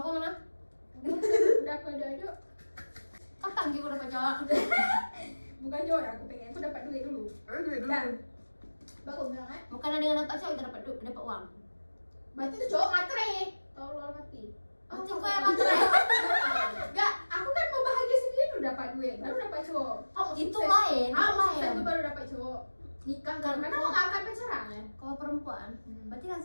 mana? Udah aku aduk. Kapan kita dapat jawab? Bukan joy, aku pengen aku dapat duit dulu. Aduh, Dan bagus bilang kan? Bukan dengan dapat cowok kita dapat uang. Berarti itu cowok matre. Tolol mati. Mati kok yang matre. Enggak, aku kan mau bahagia sendiri dulu dapat duit, baru dapat cowok. Oh, Itu lain, itu lain. lain. Itu baru dapat cowok. Nikah kan? Karena aku nggak akan pacaran ya. Kalau perempuan, berarti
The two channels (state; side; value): inverted; both; correlation -1.00